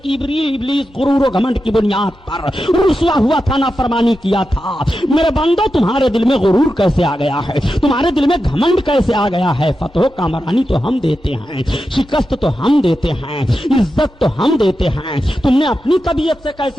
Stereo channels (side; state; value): both; normal; correlation 0.90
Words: کہ ابلیس غرور و گھمنڈ کی بنیاد پر رسوا ہوا تھا، نافرمانی کیا تھا۔ میرے بندو، تمہارے دل میں غرور کیسے آ گیا ہے؟ تمہارے دل میں گھمنڈ کیسے آ گیا ہے؟ فتح و کامرانی تو ہم دیتے ہیں، شکست تو ہم دیتے ہیں، عزت تو ہم دیتے ہیں، تم نے اپنی طبیعت سے